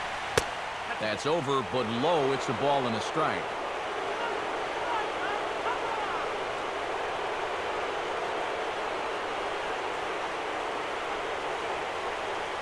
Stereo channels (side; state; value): both; identical; correlation 1.00